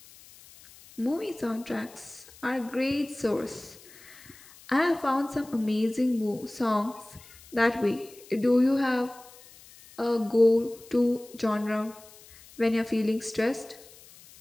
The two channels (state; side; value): noise; left; hiss, 22 dB below the sound